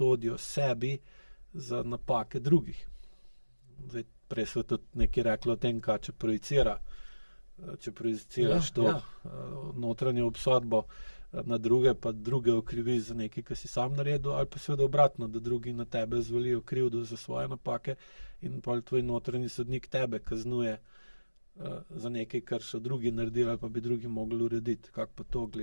sebi za napake drugih. Zdaj, prej so tudi nekaj rekli o tem, kaj če projiciraš notranjo obsodbo na druge, pa druge okriviš za nekaj, ki si sam naredil, ali pa seveda obratno, da drugi na tebe zvalijo krivdo za svoje napake in pol tvoj notranji sodnik tebe kaznuje za nekaj, kar so drugi naredili, ali pa bi drugi mogli urediti. Kako pa to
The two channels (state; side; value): inverted; both; correlation -1.00